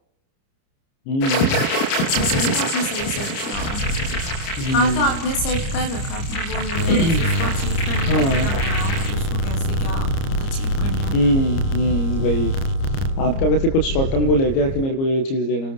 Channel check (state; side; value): late; right; 30 ms